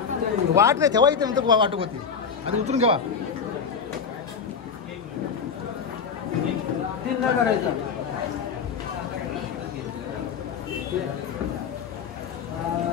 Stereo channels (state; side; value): quieter; right; 6.2 dB